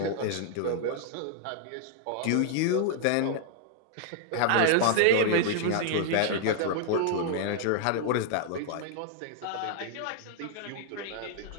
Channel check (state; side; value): different; both; correlation 0.00